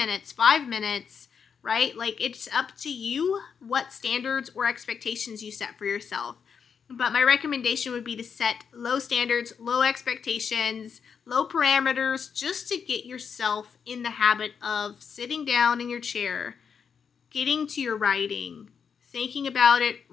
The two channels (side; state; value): right; quieter; 6.7 dB